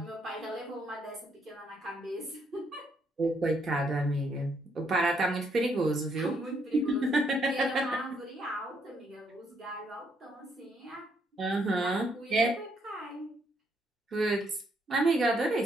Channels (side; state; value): both; normal; correlation 0.73